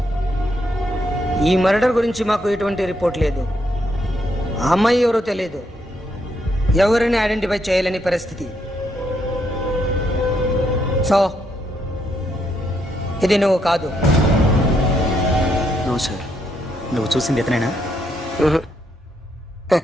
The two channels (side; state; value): both; normal; correlation 0.76